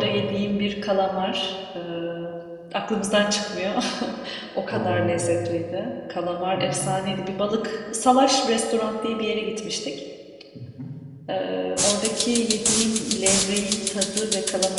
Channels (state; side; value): identical; both; correlation 1.00